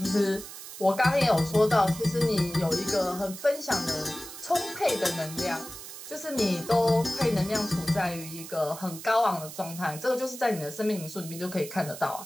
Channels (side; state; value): right; noise; hiss, 12 dB below the sound